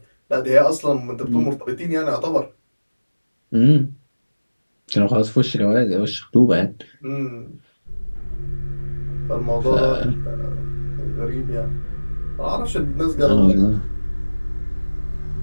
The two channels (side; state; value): both; inverted; correlation -1.00